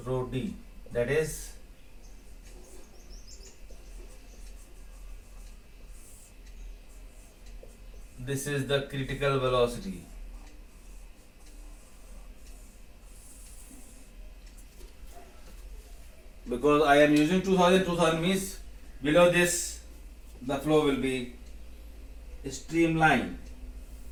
rho D, that is this is the critical velocity. Because I am using 2000 means below this the flow will be streamlined.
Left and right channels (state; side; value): identical; both; correlation 1.00